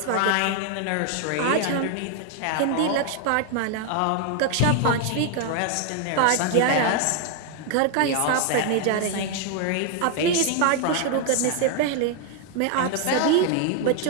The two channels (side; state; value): both; different; correlation 0.00